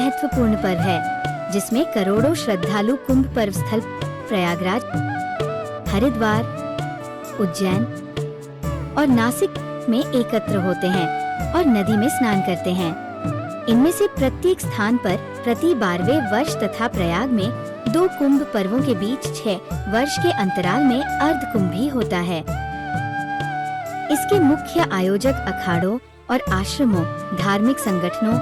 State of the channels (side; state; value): both; identical; correlation 1.00